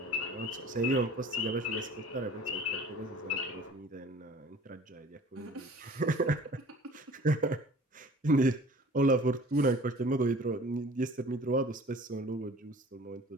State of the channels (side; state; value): both; normal; correlation 0.46